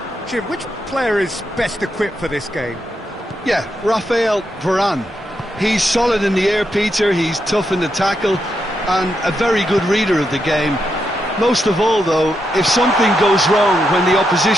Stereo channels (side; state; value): both; normal; correlation 0.83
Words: Jim, which player is best equipped for this game? Yeah, Raphael Varane. He's solid in the air, Peter. He's tough in the tackle and a very good reader of the game. Most of all, though, if something goes wrong when the